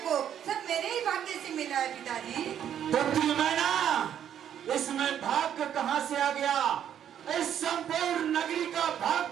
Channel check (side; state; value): left; quieter; 9.7 dB